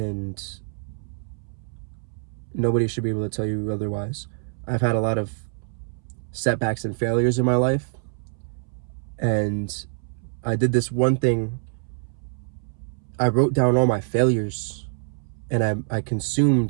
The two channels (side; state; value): left; silent; 61 dB below the other